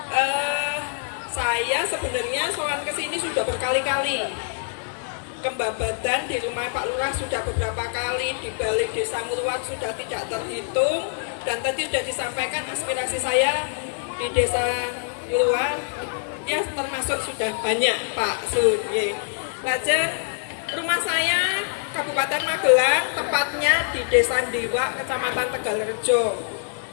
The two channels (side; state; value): right; silent; digital silence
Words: Saya sebenarnya soal kesini sudah berkali-kali. Ke Babadan di rumah Pak Lurah sudah beberapa kali, di balik desa Ngeluar sudah tidak terhitung, dan tadi sudah disampaikan aspirasi saya di desa Ngeluar ya termasuk sudah banyak Pak Sun. Lajeng rumah saya Kabupaten Magelang, tepatnya di Desa Ndiwa, Kecamatan Tegalrejo.